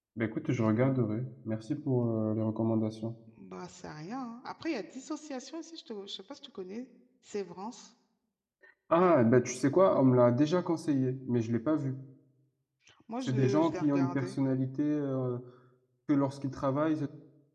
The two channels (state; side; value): identical; both; correlation 1.00